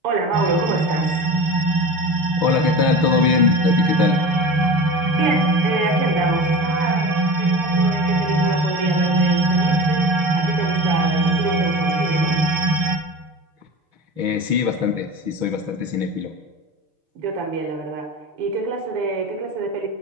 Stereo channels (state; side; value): late; left; 6.1 ms